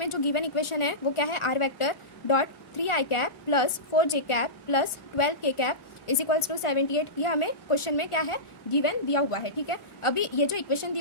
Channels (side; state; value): right; late; 1.4 ms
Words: जो गिवन इक्वेशन है वो क्या है, r vector dot 3i cap plus 4j cap plus 12k cap is equals to 78, ये हमें क्वेश्चन में क्या है गिवन दिया हुआ है। ठीक है, अभी ये जो इक्वेशन दी